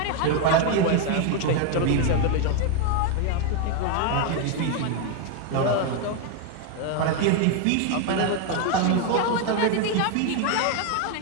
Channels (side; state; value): both; different; correlation 0.01